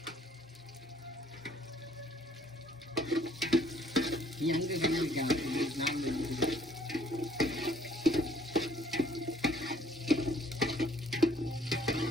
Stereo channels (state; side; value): normal; both; correlation 0.61